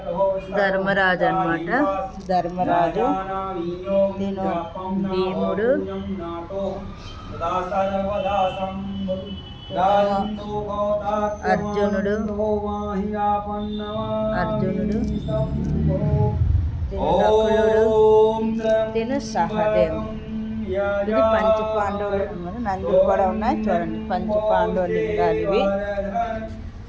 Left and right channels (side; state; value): both; identical; correlation 1.00